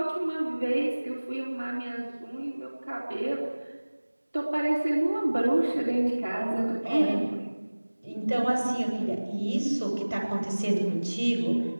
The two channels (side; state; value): both; inverted; correlation -1.00